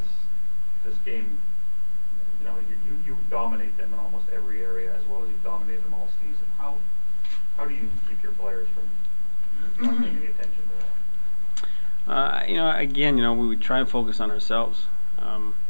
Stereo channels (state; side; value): inverted; both; correlation -1.00